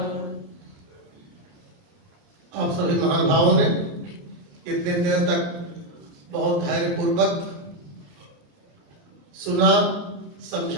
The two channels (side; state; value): left; late; 29 ms